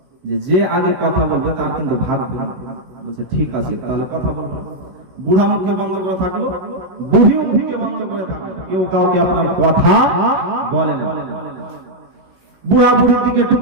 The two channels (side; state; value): left; late; 16 ms